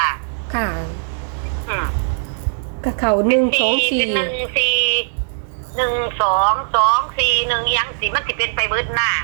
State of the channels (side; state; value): left; silent; digital silence